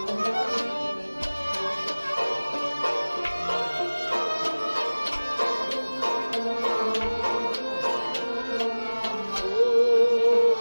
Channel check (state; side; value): inverted; both; correlation -1.00